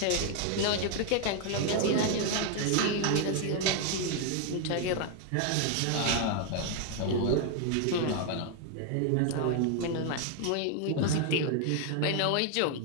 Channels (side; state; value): both; different; correlation 0.00